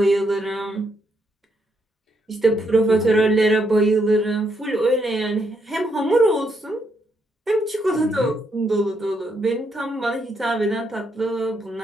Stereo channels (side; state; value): both; normal; correlation 0.77